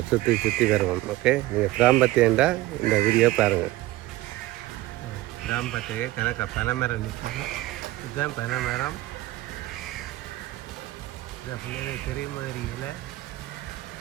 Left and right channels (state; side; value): quieter; left; 17.4 dB